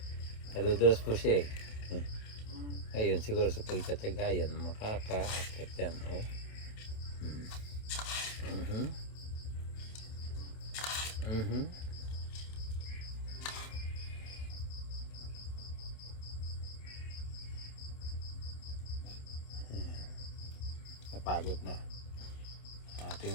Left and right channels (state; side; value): late; right; 27 ms